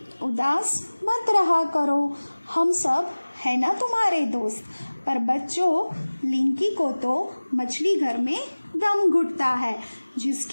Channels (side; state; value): both; inverted; correlation -1.00